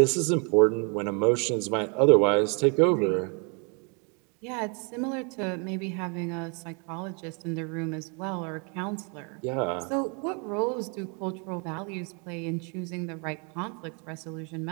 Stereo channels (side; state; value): left; quieter; 35.5 dB